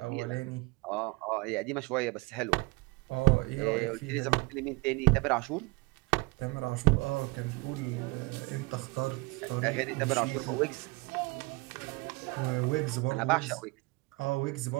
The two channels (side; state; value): left; quieter; 25.4 dB